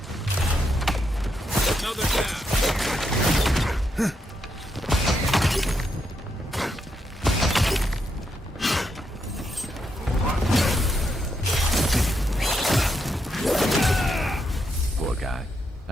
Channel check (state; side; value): normal; both; correlation 0.80